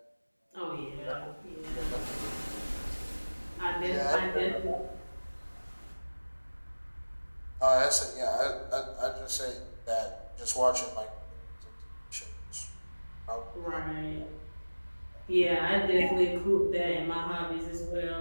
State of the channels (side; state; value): both; inverted; correlation -1.00